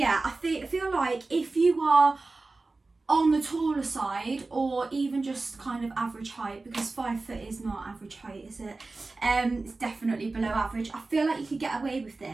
I feel like if you are on the taller side or even just kind of average height, because 5 foot is not average height, is it? It's definitely below average. I feel like you could get away with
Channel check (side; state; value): left; quieter; 3.5 dB